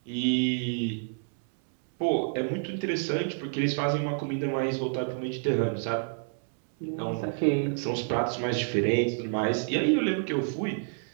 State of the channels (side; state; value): left; silent; 59 dB below the other